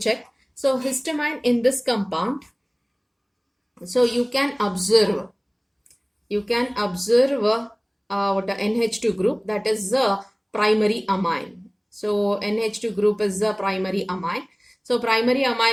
So histamine in this compound, so you can observe what a NH2 group, that is the primary amine. So NH2 group is the primary amine. So primary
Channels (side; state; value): both; identical; correlation 1.00